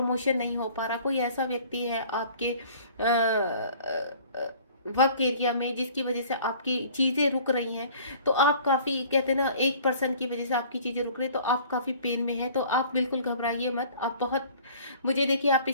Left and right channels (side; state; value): both; inverted; correlation -0.50